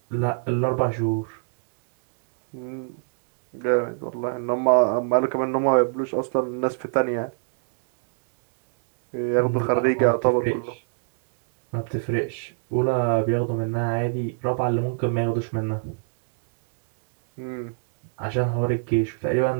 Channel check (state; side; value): silent; left; digital silence